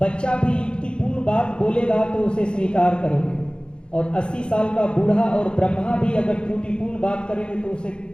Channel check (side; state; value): right; late; 0.053 ms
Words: बच्चा भी युक्तिपूर्ण बात बोलेगा तो उसे स्वीकार करोगे, और 80 साल का बूढ़ा और ब्रह्मा भी अगर त्रुटिपूर्ण बात करेंगे तो उसे